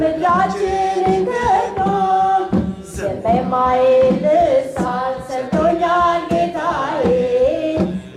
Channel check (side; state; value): both; identical; correlation 1.00